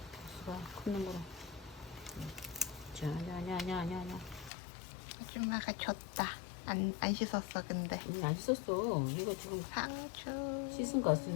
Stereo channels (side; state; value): right; drops out; at 4.5 s